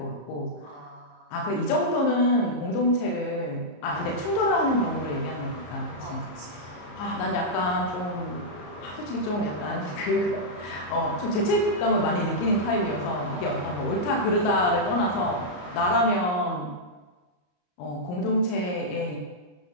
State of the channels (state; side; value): late; right; 34 ms